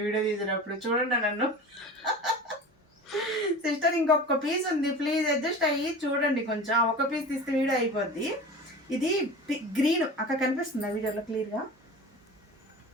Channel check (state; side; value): normal; both; correlation 0.35